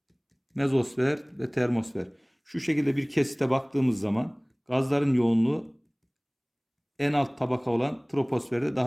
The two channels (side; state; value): both; identical; correlation 1.00